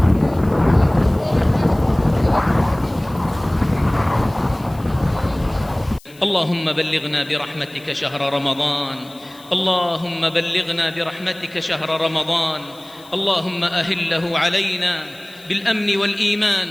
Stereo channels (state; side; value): noise; left; hiss, 25 dB below the sound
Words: اللهم بلغنا برحمتك شهر رمضان اللهم بلغنا برحمتك شهر رمضان اللهم أهله علينا بالأمن والإيمان